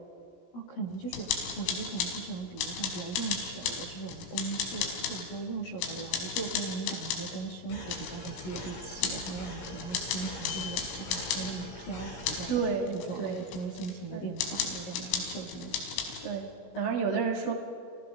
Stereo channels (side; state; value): right; late; 18 ms